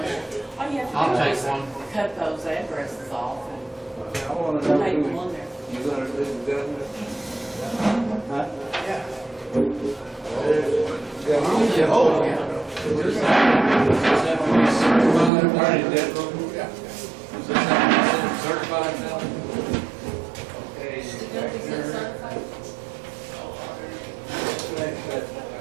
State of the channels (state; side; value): drops out; left; at 15.3 s